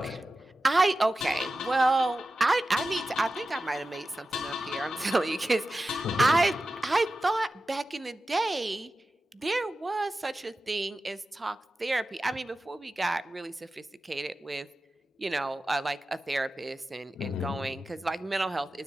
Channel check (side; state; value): both; normal; correlation 0.93